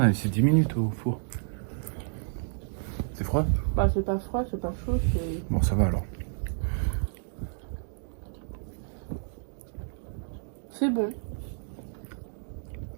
a laissé 10 minutes au four. C'est froid? Bah, c'est pas froid, c'est pas chaud, c'est... Bon, ça va alors. C'est bon.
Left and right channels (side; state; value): left; silent; digital silence